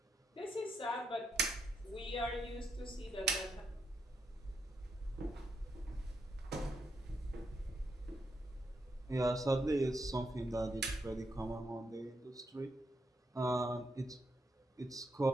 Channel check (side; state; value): both; normal; correlation 0.81